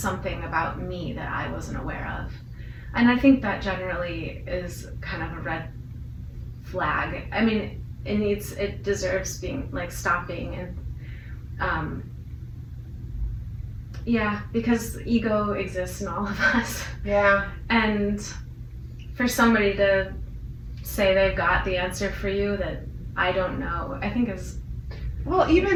about me that I wasn't aware of. And I think that generally is kind of a red flag. I mean, it deserves being like stopping and because ego exists in all of us. Yeah. And for somebody to say they've got the answer for you that I don't know, I think is... Well,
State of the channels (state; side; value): identical; both; correlation 1.00